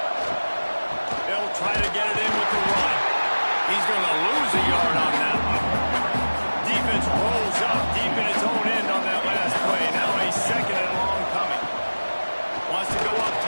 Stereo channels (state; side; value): inverted; both; correlation -1.00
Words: They'll try to get it in with the run. He's going to lose a yard on that one. Defense rolls up deep in its own end on that last play. Now a 2nd and long coming. Wants to go up